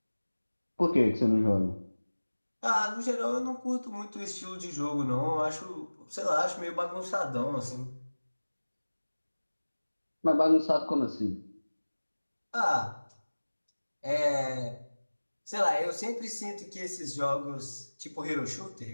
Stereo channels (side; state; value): both; inverted; correlation -1.00